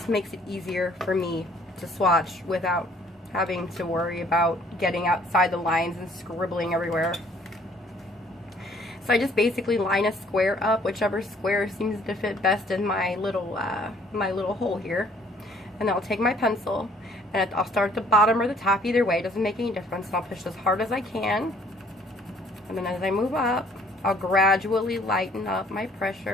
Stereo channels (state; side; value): normal; both; correlation 0.60